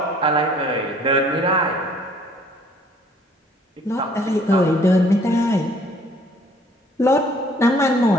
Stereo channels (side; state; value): both; normal; correlation 0.58